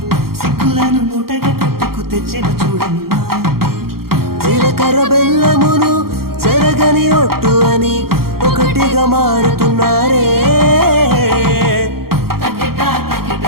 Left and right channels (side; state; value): left; late; 0.94 ms